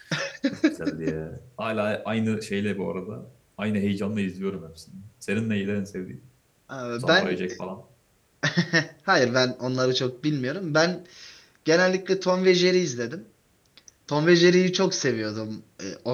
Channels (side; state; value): both; identical; correlation 1.00